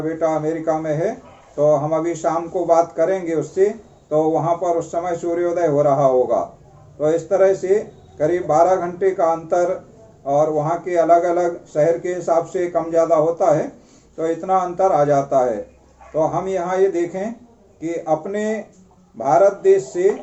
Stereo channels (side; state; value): both; identical; correlation 1.00